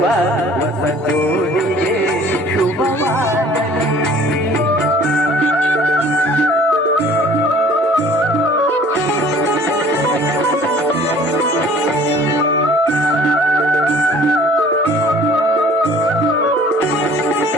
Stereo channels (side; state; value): both; normal; correlation 0.51